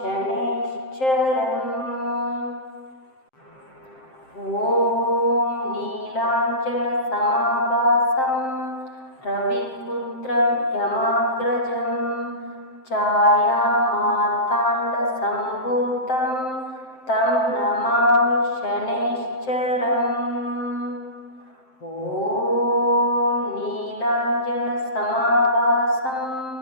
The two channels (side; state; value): right; late; 7.7 ms